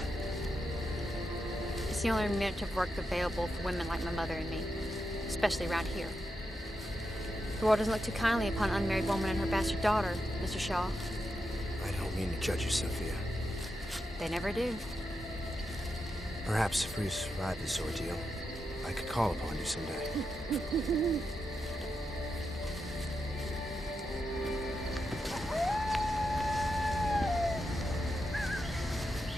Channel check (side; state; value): both; normal; correlation 0.86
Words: It's the only minute of work available for women like my mother and me, especially around here. The world doesn't look too kindly upon an unmarried woman and her bastard daughter, Mr. Shaw. I don't mean to judge you, Sophia. They never do. Perhaps if we survive this ordeal, I could call upon you someday.